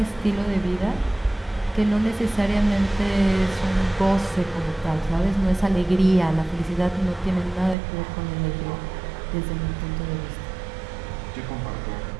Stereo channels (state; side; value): drops out; left; at 7.8 s